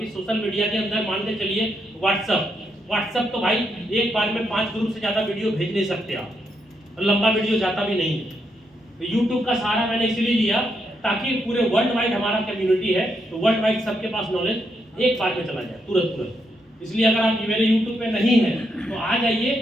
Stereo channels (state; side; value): normal; both; correlation 0.80